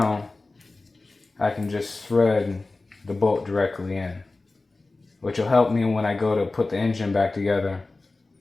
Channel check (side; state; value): right; quieter; 3.3 dB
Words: I can just thread the bolt directly in, which will help me when I go to put the engine back together.